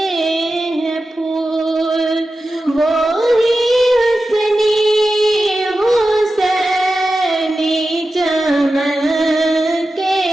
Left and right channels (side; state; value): both; normal; correlation 0.93